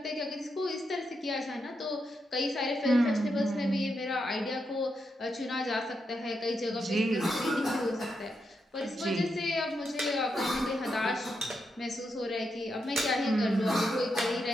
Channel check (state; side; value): normal; both; correlation 0.84